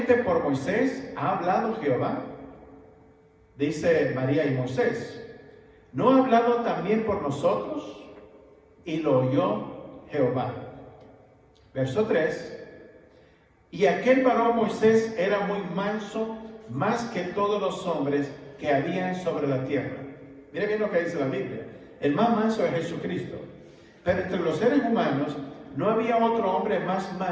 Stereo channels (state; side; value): identical; both; correlation 1.00